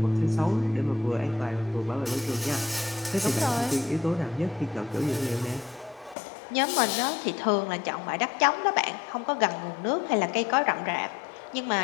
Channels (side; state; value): right; drops out; at 6.2 s